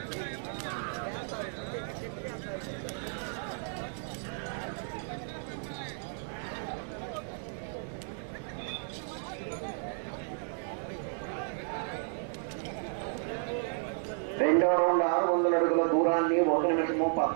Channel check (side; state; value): left; silent; 56 dB below the other